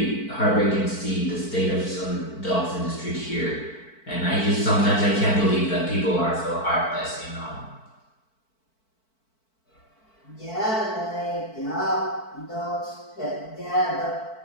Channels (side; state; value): right; late; 4.5 ms